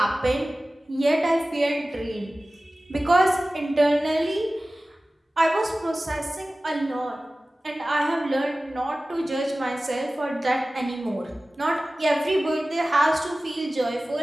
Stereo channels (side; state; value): both; normal; correlation 0.97